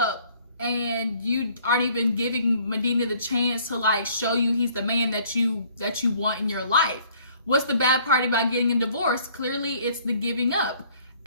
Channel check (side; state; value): both; inverted; correlation -0.59